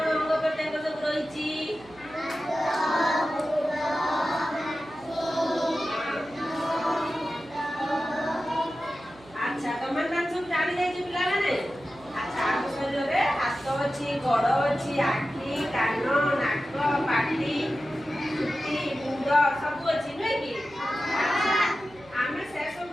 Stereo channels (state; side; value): noise; right; hum, 23 dB below the sound